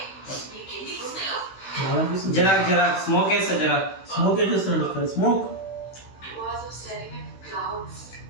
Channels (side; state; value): right; late; 16 ms